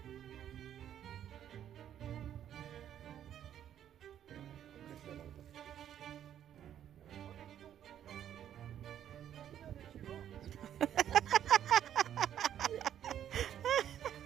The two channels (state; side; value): quieter; left; 10.3 dB